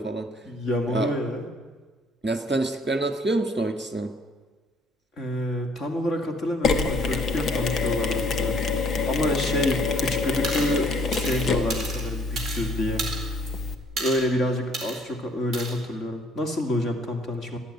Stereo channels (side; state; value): both; normal; correlation 0.61